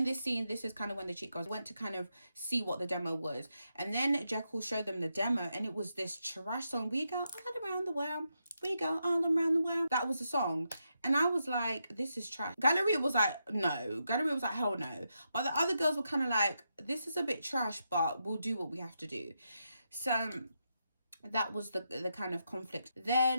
this scene, this is kind of when the Cheetah Girls went to kind of see what the demo was. And then Jekyll showed them the demo, and it was this trash song, We Go All Around the World, We Go All Around the World. That was the song. And I was like, this is trash. Galleria was like, no. Galleria was like, hell no. But the other girls were kind of like, this is a bit trash, but we'll do what we have to do. So that was the kind of conflict.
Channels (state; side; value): inverted; both; correlation -0.84